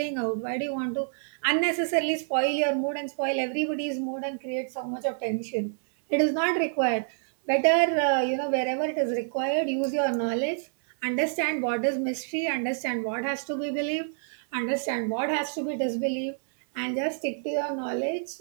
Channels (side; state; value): left; silent; 60 dB below the other